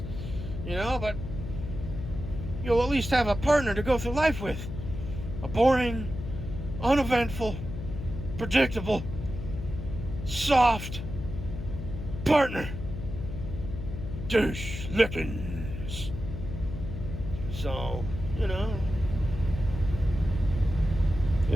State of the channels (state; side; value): noise; left; hum, 7 dB below the sound